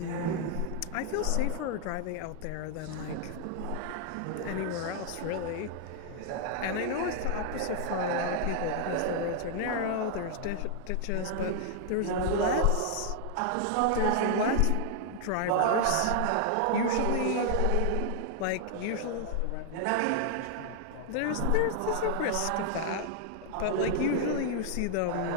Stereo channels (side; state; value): both; different; correlation 0.00